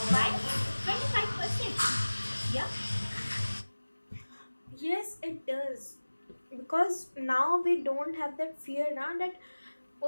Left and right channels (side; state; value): both; inverted; correlation -1.00